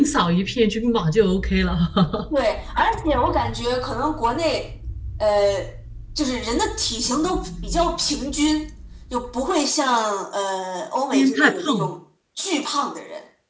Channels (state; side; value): identical; both; correlation 1.00